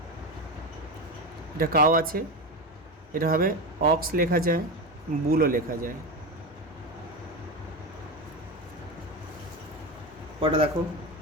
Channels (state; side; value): normal; both; correlation 0.19